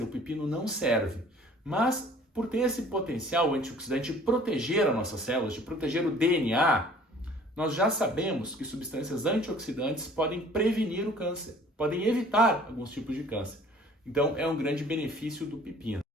o pepino não serve, mas por ter esse potencial antioxidante de proteger as nossas células, de proteger o DNA, nós já sabemos que substâncias antioxidantes podem prevenir o câncer, podem evitar alguns tipos de câncer. Então, é um grande benefício do pepino.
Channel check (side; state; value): both; normal; correlation 0.52